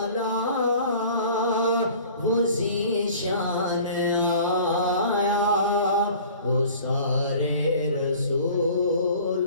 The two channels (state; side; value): inverted; both; correlation -0.46